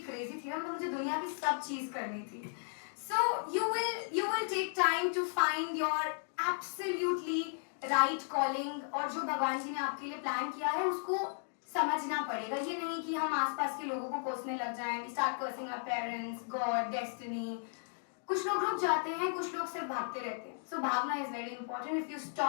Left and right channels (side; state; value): right; silent; digital silence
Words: crazy थी ना, मतलब मुझे दुनिया की सब चीज करनी थी. So you will take time to find your absolutely right calling, और जो भगवान जी ने आपके लिए प्लान किया है उसको समझना पड़ेगा. ये नहीं कि हम आसपास के लोगों को कोसने लग जाएं. We start cursing our parents, God, destiny. कुछ लोग रुक जाते हैं, कुछ लोग सिर्फ भागते रहते हैं. So भागना is very important. If you